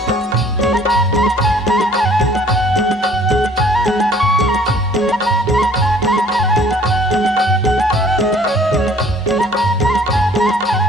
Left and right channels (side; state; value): both; normal; correlation 0.55